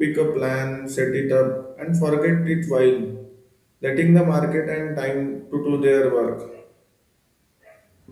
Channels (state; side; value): identical; both; correlation 1.00